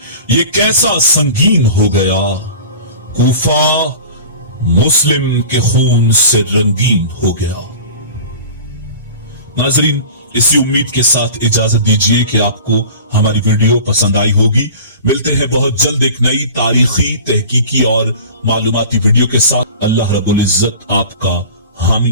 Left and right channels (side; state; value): both; inverted; correlation -0.39